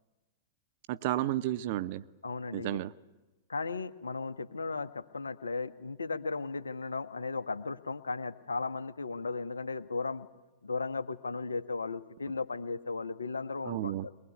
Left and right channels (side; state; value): both; inverted; correlation -0.66